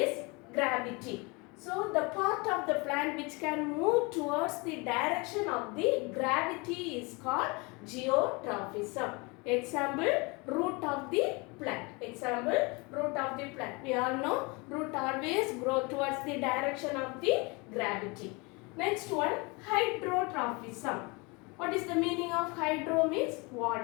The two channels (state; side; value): quieter; right; 27.9 dB